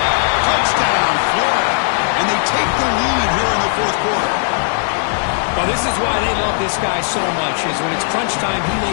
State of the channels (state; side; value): silent; right; digital silence